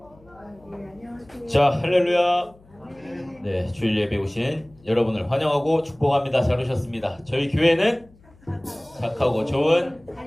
자, 할렐루야. 네, 주일 예배 오신 여러분을 환영하고 축복합니다. 잘 오셨습니다. 저희 교회는 착하고 좋은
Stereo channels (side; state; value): left; noise; hum, 28 dB below the sound